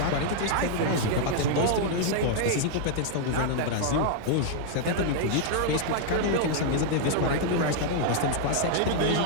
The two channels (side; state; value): both; different; correlation -0.01